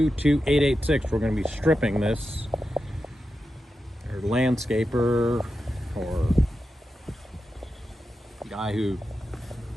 We're going to be stripping this. Our landscaper or guy who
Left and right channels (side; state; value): both; normal; correlation 0.90